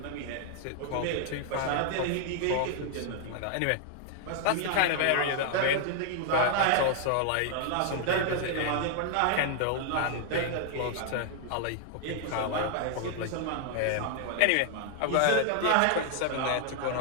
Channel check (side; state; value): both; different; correlation 0.00